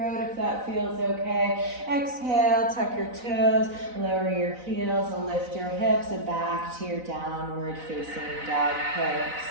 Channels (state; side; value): late; left; 4.0 ms